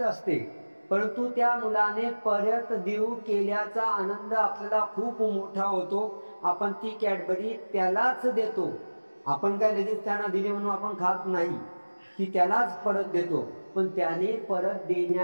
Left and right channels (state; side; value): inverted; both; correlation -1.00